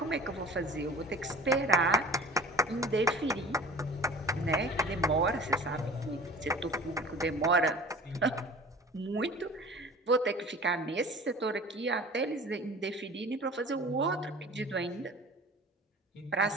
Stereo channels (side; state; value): both; normal; correlation 0.42